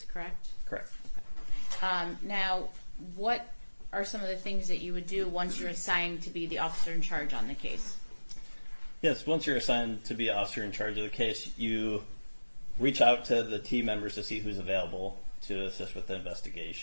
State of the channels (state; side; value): inverted; both; correlation -1.00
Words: correct? Correct. Now, what are some of the things that you would do once you're assigned to be the officer in charge on the case? Yes, once you're assigned to be officer in charge of the case, you reach out to the team members to see who's available to assist with the